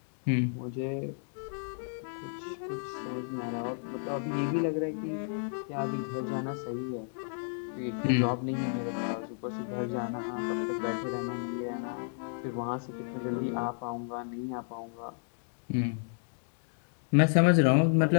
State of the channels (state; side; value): silent; right; digital silence